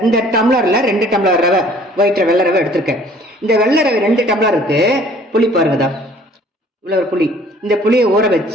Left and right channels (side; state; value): both; normal; correlation 0.54